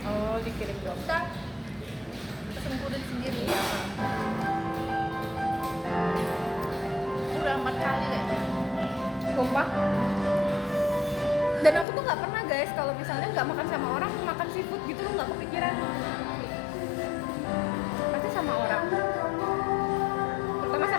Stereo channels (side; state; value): right; drops out; at 11.9 s